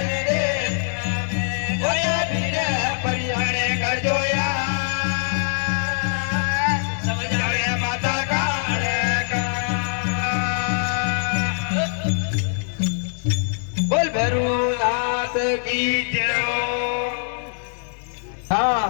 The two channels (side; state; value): right; silent; digital silence